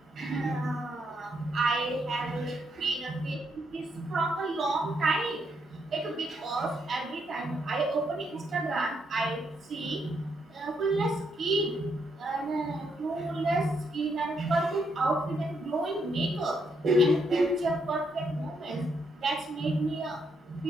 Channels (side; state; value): both; normal; correlation 0.76